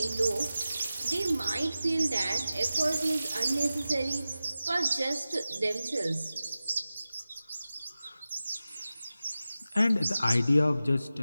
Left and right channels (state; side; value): inverted; both; correlation -0.94